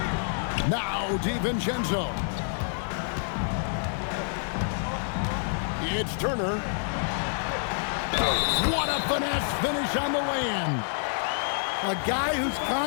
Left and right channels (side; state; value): right; silent; digital silence